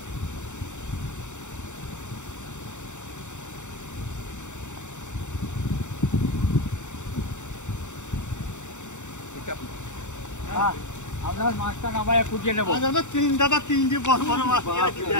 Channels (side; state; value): right; late; 0.84 ms